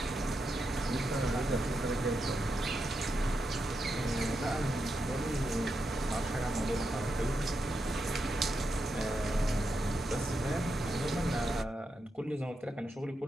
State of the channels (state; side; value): normal; both; correlation 0.85